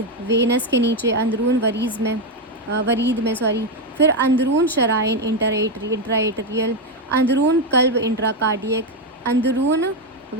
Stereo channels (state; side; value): normal; both; correlation 0.07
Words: وینس کے نیچے، اندرون ورید میں پھر اندرون شرائن، انٹرائیٹریل۔ اندرون قلب، انٹرا کارڈیک۔ اندرون